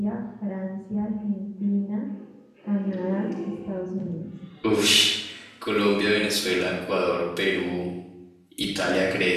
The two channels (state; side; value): identical; both; correlation 1.00